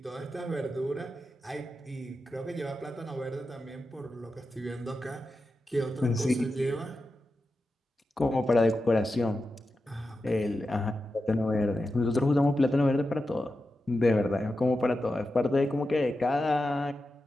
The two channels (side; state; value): both; normal; correlation 0.91